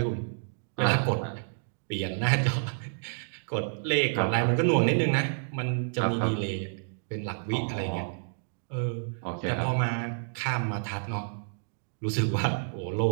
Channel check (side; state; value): left; silent; digital silence